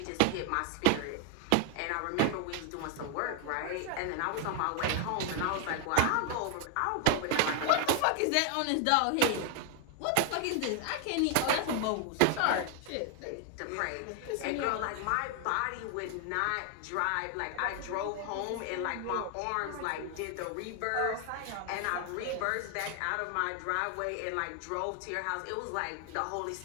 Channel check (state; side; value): different; both; correlation 0.00